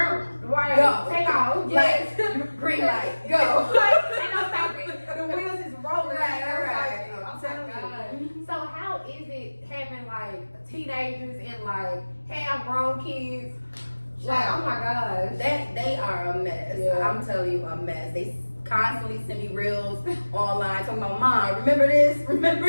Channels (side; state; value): both; inverted; correlation -1.00